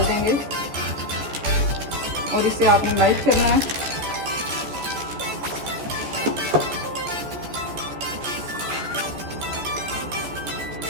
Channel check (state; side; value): late; left; 14 ms